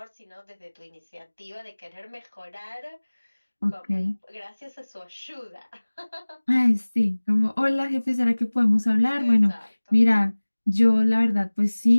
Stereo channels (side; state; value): both; inverted; correlation -1.00